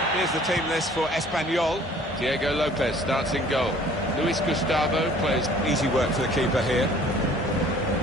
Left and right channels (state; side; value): normal; both; correlation 0.53